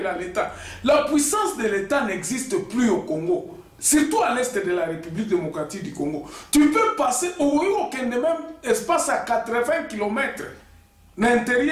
l'état. La puissance de l'état n'existe plus au Congo. Surtout à l'est de la République démocratique du Congo. Tu peux passer au même espace à 80 km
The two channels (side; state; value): both; identical; correlation 1.00